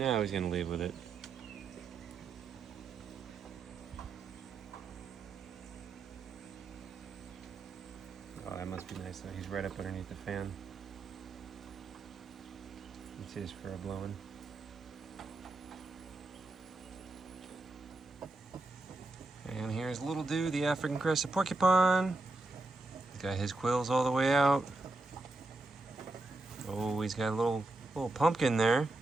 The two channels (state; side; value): quieter; left; 3.1 dB